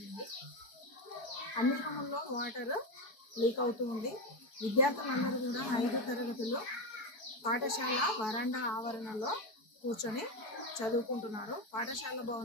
అన్ని రూముల్లో వాటర్ లీక్ అవుతూ ఉంది. విద్యార్థులందరూ కూడా 5 తరగతులు పాఠశాల వరండా ఆవరణలో కూర్చొని చదువుకుంటున్నారు. పాఠశాల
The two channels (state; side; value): late; right; 4.6 ms